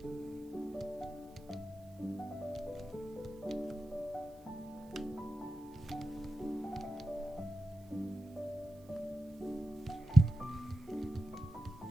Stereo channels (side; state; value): right; noise; hiss, 28 dB below the sound